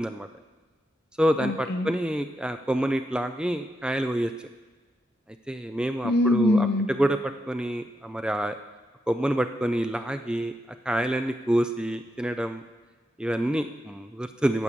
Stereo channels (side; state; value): both; normal; correlation 0.84